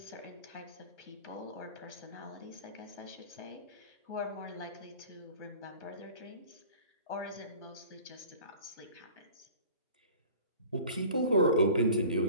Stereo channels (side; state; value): both; inverted; correlation -0.43